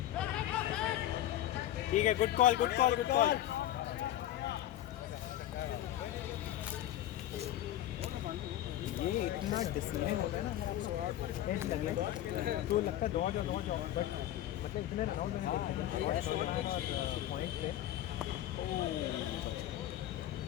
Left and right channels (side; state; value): right; quieter; 13.0 dB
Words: ठीक है, good call good call good call. ये इतना डिसिप्लिन होता है ना एज लगना तो लगता है दौड़ जाओ बट मतलब इतने राउंड में पॉइंट पे